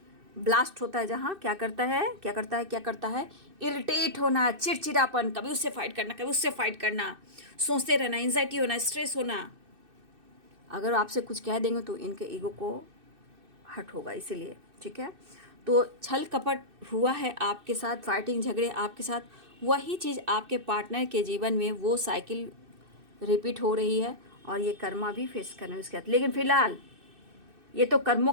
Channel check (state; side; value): late; left; 2.6 ms